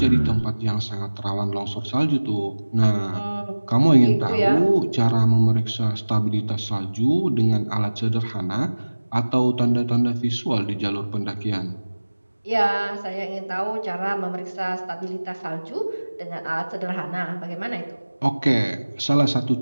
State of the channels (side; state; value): both; inverted; correlation -1.00